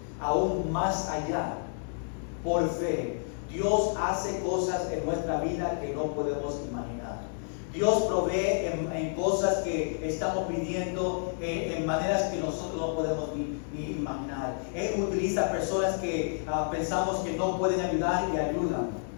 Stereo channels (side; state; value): right; silent; digital silence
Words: aún más allá, por fe, Dios hace cosas en nuestra vida que no podemos imaginar. Dios provee en cosas que estamos pidiendo en maneras que nosotros no podemos ni imaginar. Él utiliza personas que pensamos que no pueden ayudar y ayudan.